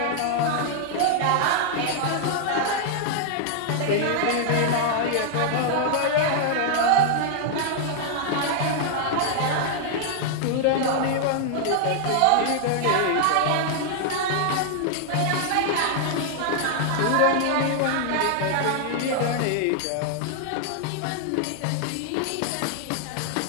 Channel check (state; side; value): different; both; correlation -0.01